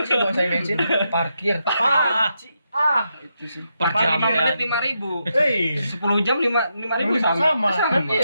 sih dong saya bensin, parkir. Itu sih. Per Depan jam 5 kan. menit 5.000. 10 10 jam 5.000 sama. Kan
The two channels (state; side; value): inverted; both; correlation -0.83